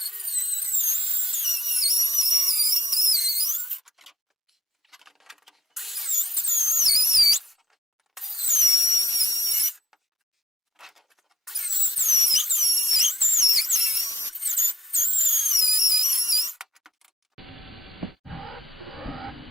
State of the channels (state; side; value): normal; both; correlation 0.74